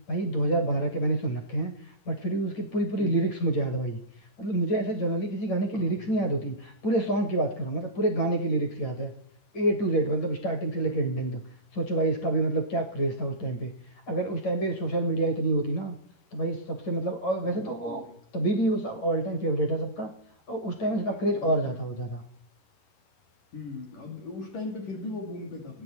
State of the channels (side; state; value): right; late; 11 ms